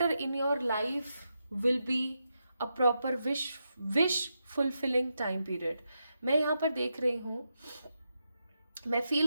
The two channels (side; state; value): both; inverted; correlation -0.86